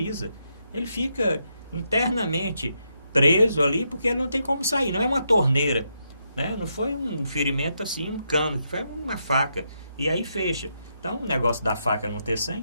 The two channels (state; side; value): inverted; both; correlation -0.81